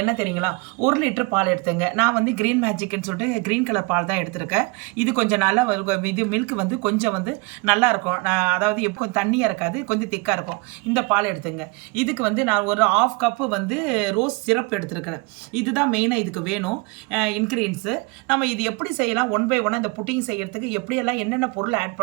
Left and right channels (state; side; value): quieter; left; 28.0 dB